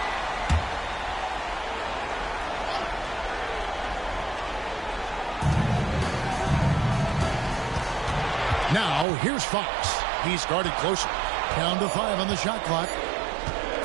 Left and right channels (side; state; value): left; drops out; at 9.1 s